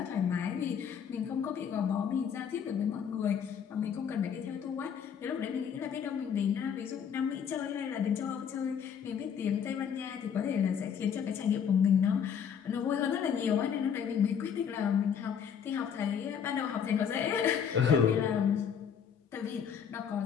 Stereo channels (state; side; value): quieter; right; 7.6 dB